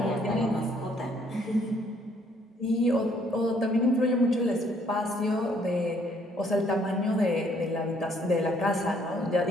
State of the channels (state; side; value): normal; both; correlation 0.65